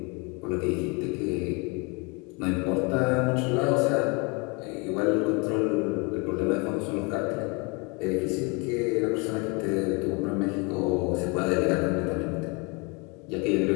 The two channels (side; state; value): right; quieter; 30.5 dB